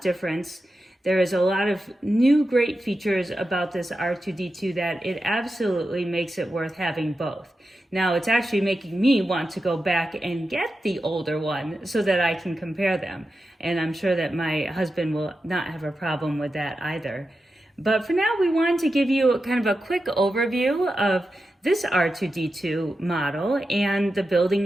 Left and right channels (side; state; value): both; normal; correlation 0.90